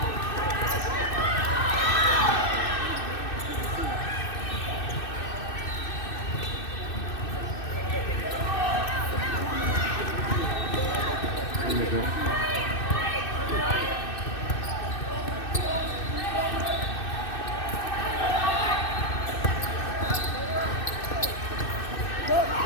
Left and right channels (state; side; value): late; right; 2.6 ms